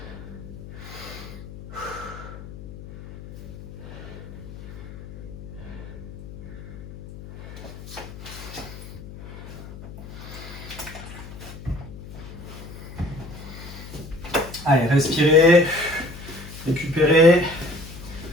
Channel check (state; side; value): noise; left; hum, 13 dB below the sound